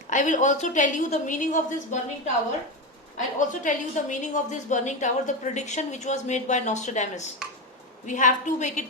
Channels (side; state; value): both; normal; correlation 0.16